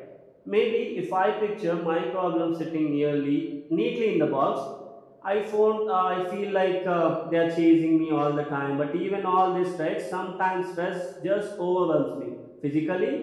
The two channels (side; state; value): both; identical; correlation 1.00